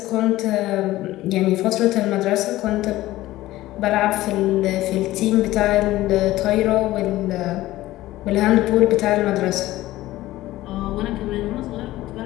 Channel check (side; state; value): right; quieter; 16.4 dB